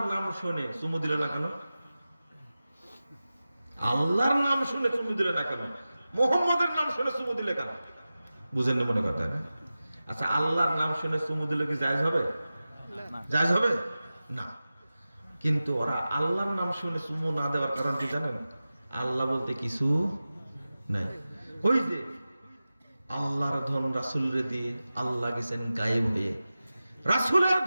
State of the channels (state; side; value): inverted; both; correlation -0.95